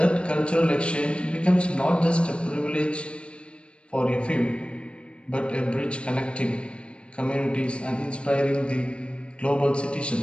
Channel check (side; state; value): right; late; 0.057 ms